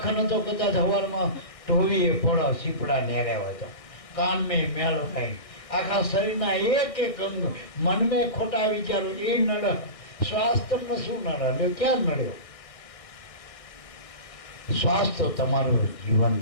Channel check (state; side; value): late; right; 1.6 ms